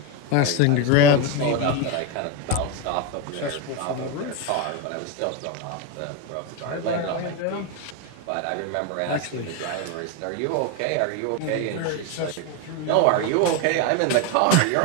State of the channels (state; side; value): different; both; correlation 0.03